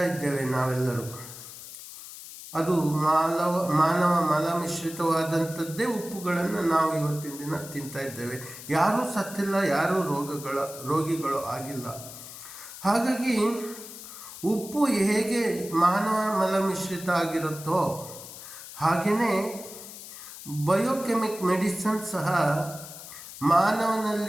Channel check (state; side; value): noise; left; hiss, 13 dB below the sound